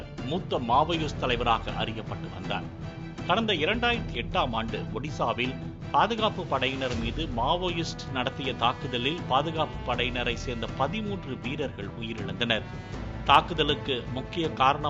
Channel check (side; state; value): both; identical; correlation 1.00